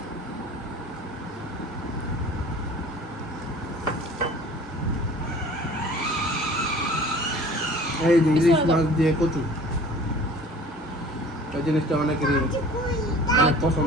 এই যে ইলিশ মাছ দিয়ে কচু, এই জিনিসটা অনেকেরই অনেক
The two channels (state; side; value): normal; both; correlation 0.46